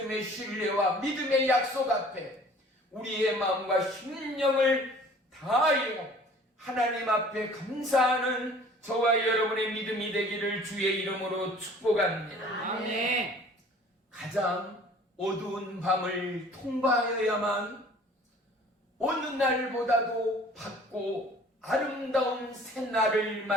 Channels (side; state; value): both; normal; correlation 0.50